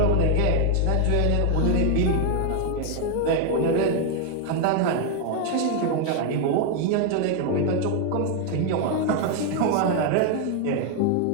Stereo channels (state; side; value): different; both; correlation 0.00